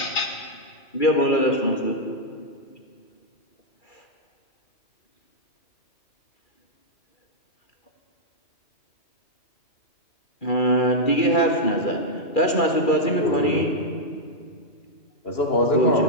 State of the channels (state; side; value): late; right; 2.4 ms